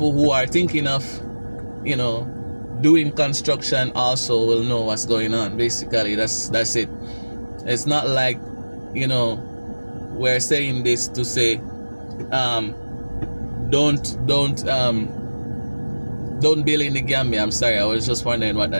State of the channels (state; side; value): inverted; both; correlation -1.00